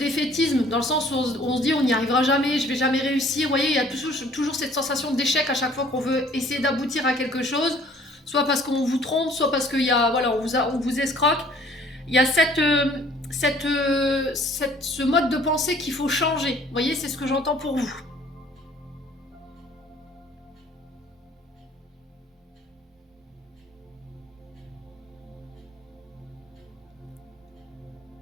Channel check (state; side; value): normal; both; correlation 0.56